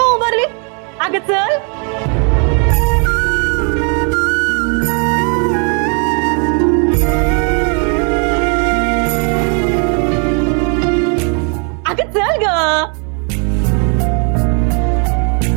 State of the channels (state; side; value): quieter; left; 38.8 dB